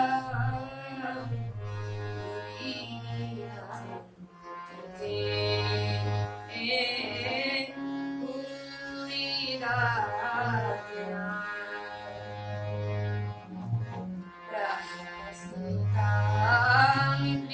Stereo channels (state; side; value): identical; both; correlation 1.00